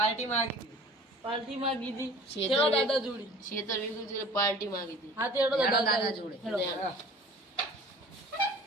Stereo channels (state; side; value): normal; both; correlation 0.45